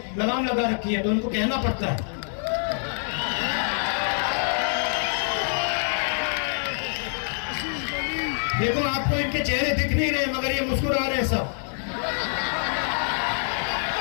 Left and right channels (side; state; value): right; silent; 61 dB below the other